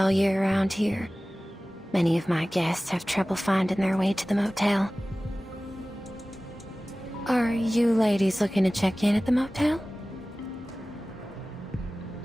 year around here. Many of my guests have trouble finding their way to the motel. Are you ladies looking to check in at the motel?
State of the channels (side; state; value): both; normal; correlation 0.97